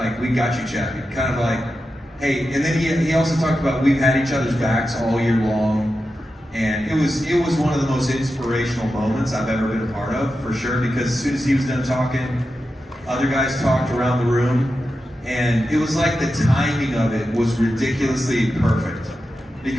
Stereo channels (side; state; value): both; normal; correlation 0.90